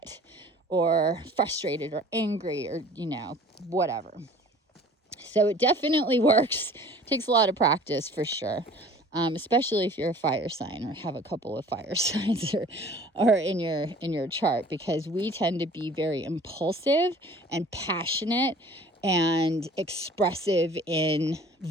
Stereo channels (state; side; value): normal; both; correlation 0.48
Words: or frustrated or angry or, whatever. So it definitely works. It takes a lot of practice for sure. Especially if you're a fire sign or have a couple of fire signs or in your chart, because we tend to be very impulsive and passionate and expressive in